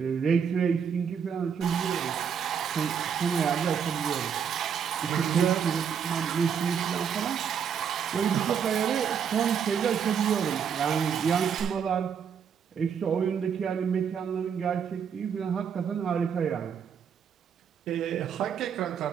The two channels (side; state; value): left; quieter; 7.4 dB